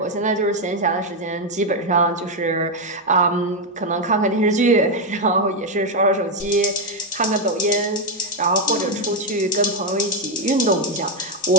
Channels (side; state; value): both; normal; correlation 0.04